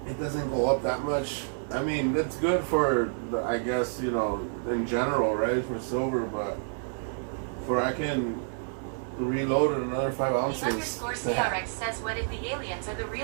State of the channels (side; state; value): left; silent; 59 dB below the other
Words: it doesn't go up that much. I mean, it's good for, I guess, you know, in general, right, for silver, but for I can reload it another 5 The ounces. underscore CRX says, what if the aliens are the